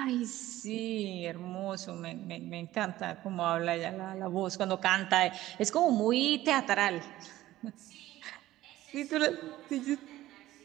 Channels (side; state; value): left; quieter; 15.4 dB